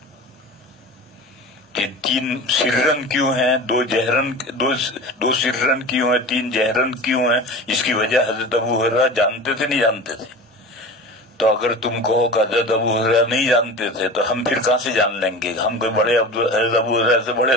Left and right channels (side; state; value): both; normal; correlation 0.34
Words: کہ 3 سرن کیوں ہیں، 2 سرن کیوں ہیں، 3 جہرن کیوں ہیں؟ اس کی وجہ حضرت ابو ہریرہ جانتے تھے نہیں جانتے تھے؟ تو اگر تم کہو کہ حضرت ابو ہریرہ نہیں جانتے تھے تو ہم پھر کہاں سے جان لیں گے؟ ہم کوئی بڑے حضرت ابو ہریرہ سے